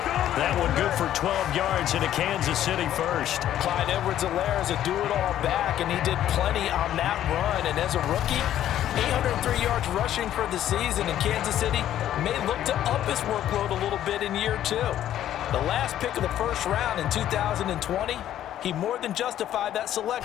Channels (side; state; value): right; quieter; 11.7 dB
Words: That one good for 12 yards into Kansas City first. Clyde Edwards-Helaire is a do-it-all back, and he did plenty on that run. And as a rookie, 803 yards rushing for the season, and Kansas City may look to up his workload a little bit in year 2. The last pick of the first round in 2020, he more than justified that